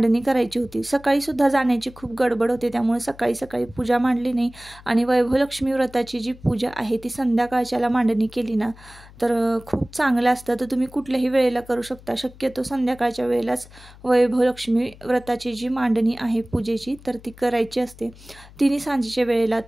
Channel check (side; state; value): left; noise; hum, 21 dB below the sound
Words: करायची होती। सकाळी सुद्धा जाण्याची खूप गडबड होते त्यामुळे सकाळी पूजा मांडली नाही आणि वैभव लक्ष्मी व्रताची जी पूजा आहे ती संध्याकाळच्याला मांडणी केली ना तर खूप चांगलं असतं। तर तुम्ही कुठल्याही वेळेला करू शकता। शक्यतो संध्याकाळच्या वेळेलाच वैभव लक्ष्मी व्रताची जी मांडणी आहे पूजेची तर ती करायची असते। तिन्ही सांजेच्या वेळेला